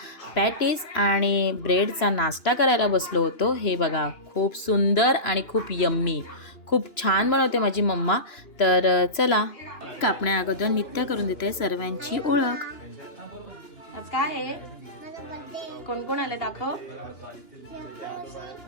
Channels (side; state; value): right; late; 2.9 ms